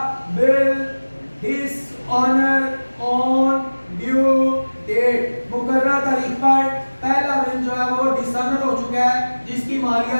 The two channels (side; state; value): both; inverted; correlation -1.00